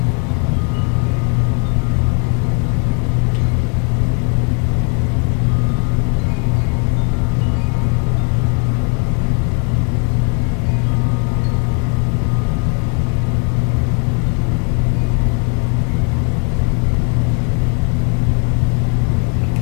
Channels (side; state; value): right; quieter; 38.4 dB